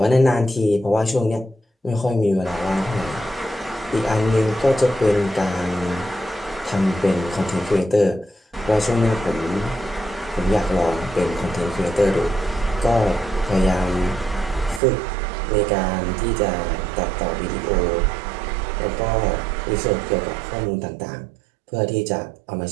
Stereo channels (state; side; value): drops out; left; at 14.8 s